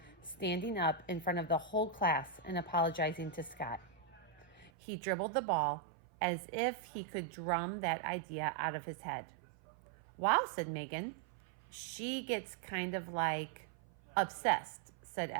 standing up in front of the whole class and apologizing to Scott. He dribbled the ball as if he could drum that idea out of his head. "Wow," said Megan. "She gets kind of like obsessed," said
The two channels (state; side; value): drops out; left; at 4.7 s